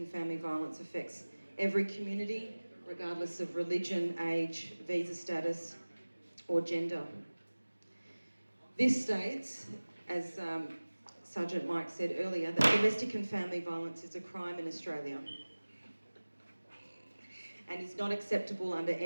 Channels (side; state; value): both; inverted; correlation -1.00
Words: family violence affects every community, regardless of religion, age, visa status, or gender. This states, as Sergeant Mike said earlier, that domestic and family violence is a crime in Australia and is not acceptable under